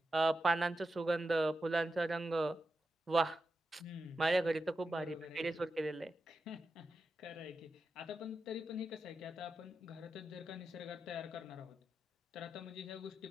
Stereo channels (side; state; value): both; normal; correlation 0.90